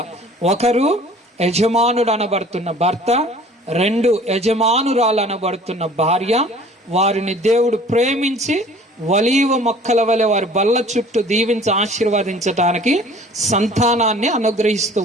ఒకరు యజమానుడు అనబడుతున్న భర్త, 2 యజమానురాలు అనబడుతున్న భార్య. వారిని దేవుడు ప్రేమించి ఒలీవ మొక్కల వలె వారి బల్ల చుట్టూ దీవించి ఆశీర్వదించటానికి సంతానాన్ని అనుగ్రహిస్తూ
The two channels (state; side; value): normal; both; correlation 0.50